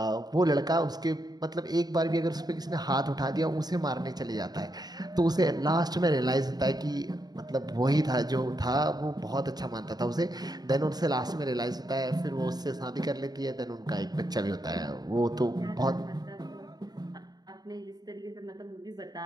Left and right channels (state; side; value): late; left; 0.19 ms